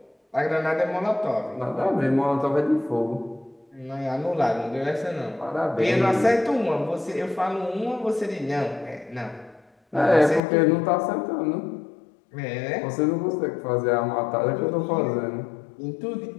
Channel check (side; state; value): right; drops out; at 10.4 s